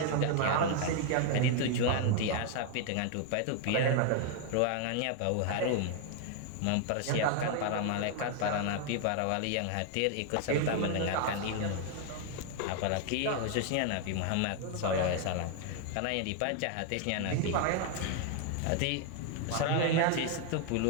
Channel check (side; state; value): both; different; correlation 0.00